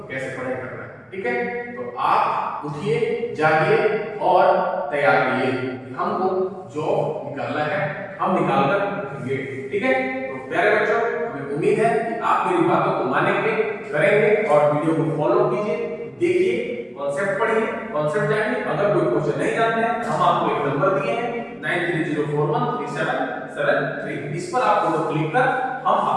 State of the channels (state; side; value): identical; both; correlation 1.00